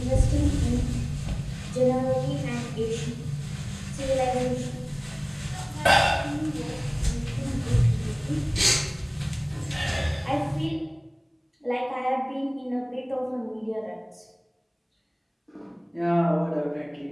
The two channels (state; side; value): identical; both; correlation 1.00